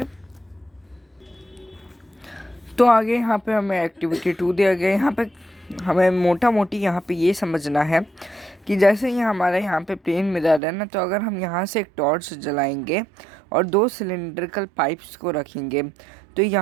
तो आगे यहाँ पे हमें एक्टिविटी 2 दिया गया। यहाँ पे हमें मोटा मोटी यहाँ पे ये समझना है कि जैसे ये हमारा यहाँ पे प्लेन मिरर है ना, तो अगर हम यहाँ से एक टॉर्च जलाएंगे और 2 सिलेंड्रिकल पाइप्स को रखेंगे, तो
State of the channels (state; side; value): drops out; left; at 10.6 s